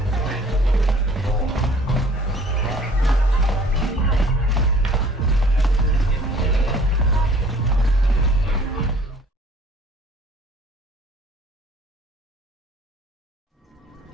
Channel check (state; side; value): normal; both; correlation 0.53